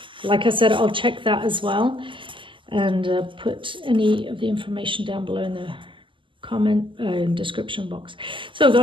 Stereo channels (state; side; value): late; left; 0.25 ms